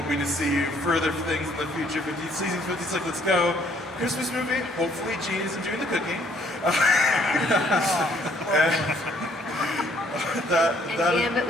to see you further things in the future. Season 56, let's go. Christmas movie. Hopefully, Gene isn't doing the cooking. And Gambit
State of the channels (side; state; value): both; normal; correlation 0.64